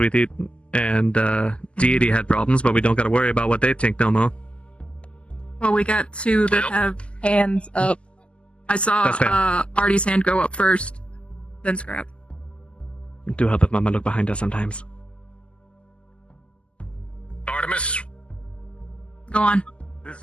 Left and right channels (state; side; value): late; right; 0.054 ms